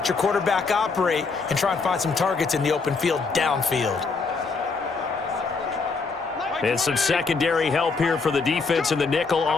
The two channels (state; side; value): quieter; right; 4.5 dB